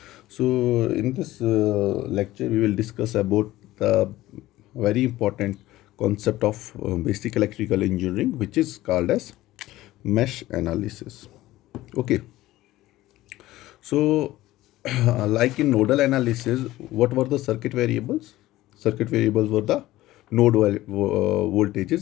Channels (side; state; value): right; quieter; 16.4 dB